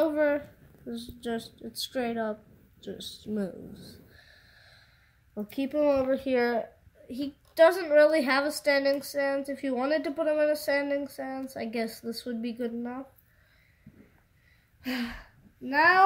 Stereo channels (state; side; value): identical; both; correlation 1.00